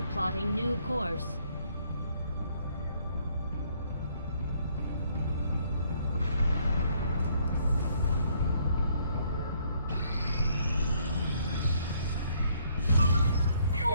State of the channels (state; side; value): inverted; both; correlation -0.67